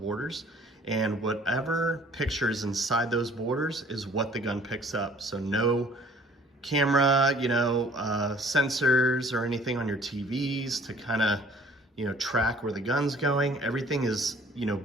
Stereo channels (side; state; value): both; normal; correlation 0.55